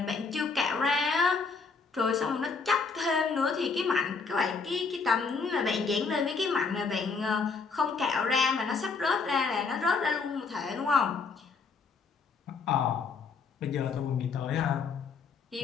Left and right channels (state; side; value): quieter; right; 4.9 dB